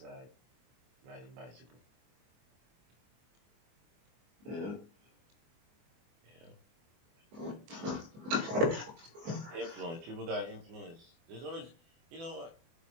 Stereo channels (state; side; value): late; left; 24 ms